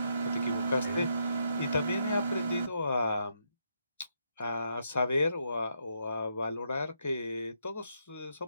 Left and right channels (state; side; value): inverted; both; correlation -0.78